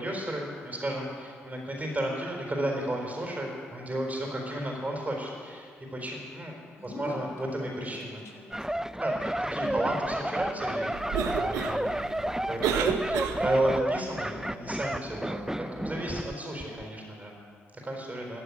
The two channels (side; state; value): both; normal; correlation 0.82